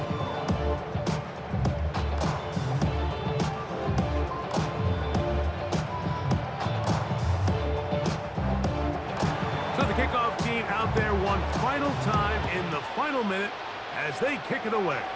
So the kickoff team out there one final time in the final minute as they kick it away.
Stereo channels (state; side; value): identical; both; correlation 1.00